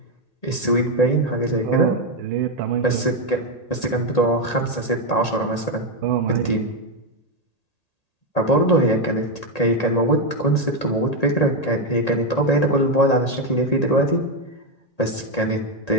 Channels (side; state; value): right; late; 1.8 ms